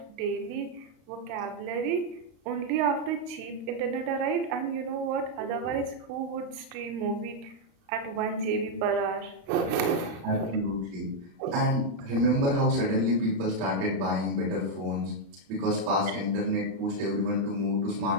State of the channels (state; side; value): late; left; 35 ms